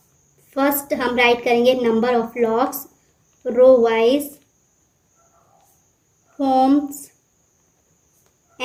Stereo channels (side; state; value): both; identical; correlation 1.00